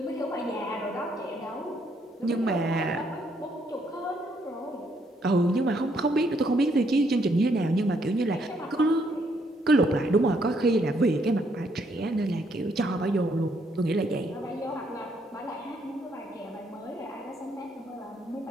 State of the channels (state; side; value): normal; both; correlation 0.72